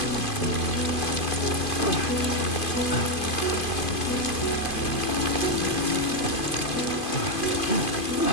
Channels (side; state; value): right; late; 2.5 ms